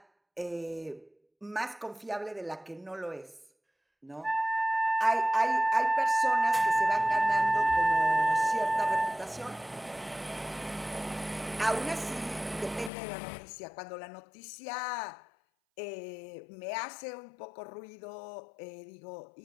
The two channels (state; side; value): drops out; right; at 12.9 s